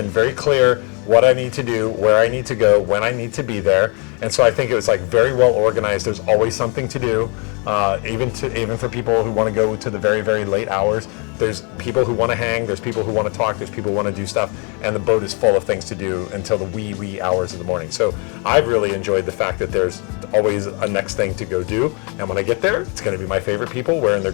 very clear what I need to do, where I need to go, when I need to be there. And so I think it was like very well organized. There's always something to do, even for people who want to go to the very, very late hours. There's people who want to hang, there's people who want to talk, there's people who want to do stuff, and the boat is full of things to do until the wee hours of the morning. So I've really enjoyed the fact that there's always a next thing to go do, and when I get there, it's going to be my favorite people wearing their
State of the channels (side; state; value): right; quieter; 34.2 dB